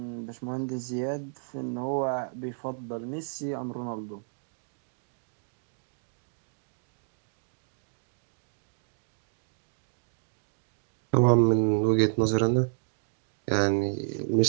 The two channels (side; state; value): left; silent; digital silence